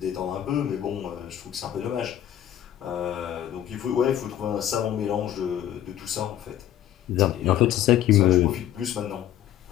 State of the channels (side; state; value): right; quieter; 11.6 dB